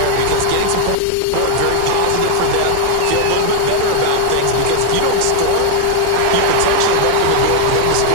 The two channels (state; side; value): different; both; correlation 0.00